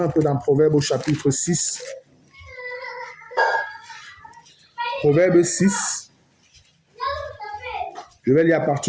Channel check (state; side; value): identical; both; correlation 1.00